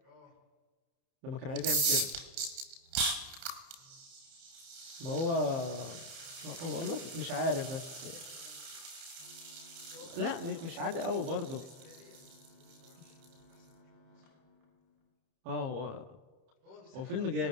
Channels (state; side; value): late; left; 30 ms